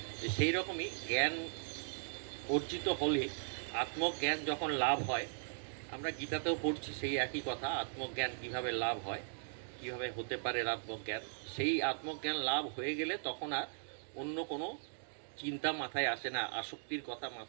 সেই রকমই জ্ঞান অর্জিত হলে, আত্মজ্ঞান যখন লাভ হয়, আমরা গীতাতেও পড়ছি সেই একই কথা, আত্মজ্ঞান কিভাবে লাভ হয়, কিভাবে হতে পারে আত্মজ্ঞান। সেই আত্মজ্ঞান লাভ হয়ে গেলে তখন আর অন্য কোনো চিন্তা মাথায় আসে না, আসক্তির কথা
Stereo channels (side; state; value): left; silent; digital silence